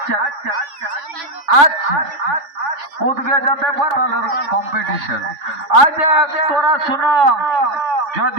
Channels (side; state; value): left; late; 3.5 ms